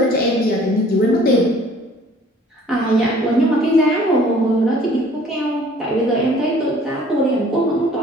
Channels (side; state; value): both; normal; correlation 0.54